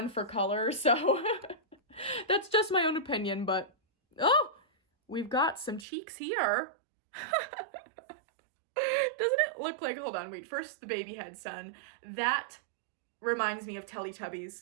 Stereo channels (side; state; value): left; drops out; at 5.9 s